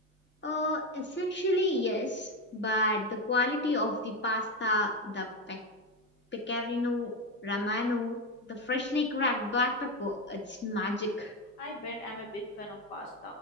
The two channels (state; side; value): normal; both; correlation 0.14